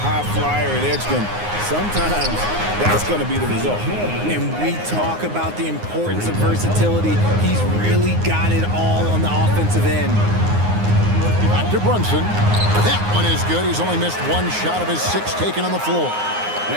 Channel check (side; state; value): left; late; 9.6 ms